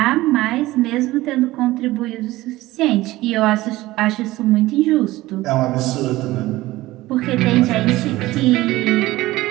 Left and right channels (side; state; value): left; quieter; 17.8 dB